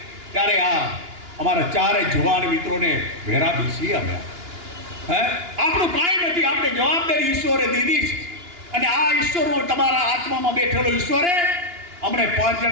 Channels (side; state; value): left; late; 2.9 ms